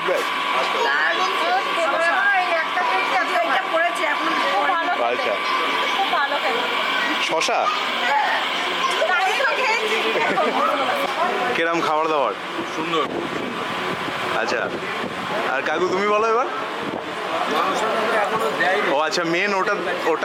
আচ্ছা শশা কিরম খাবার দাবার? সুন্দর। আচ্ছা আর কাকু তুমি বলো এবার। ও আচ্ছা মেন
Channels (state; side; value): identical; both; correlation 1.00